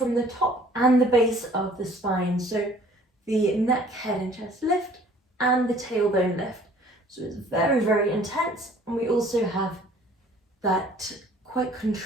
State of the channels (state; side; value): normal; both; correlation 0.54